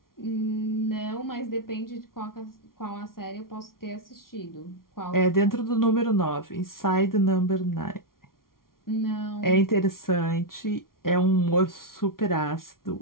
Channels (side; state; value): right; late; 0.92 ms